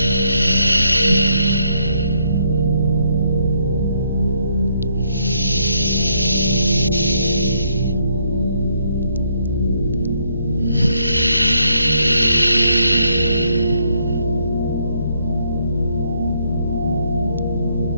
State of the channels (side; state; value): both; inverted; correlation -0.72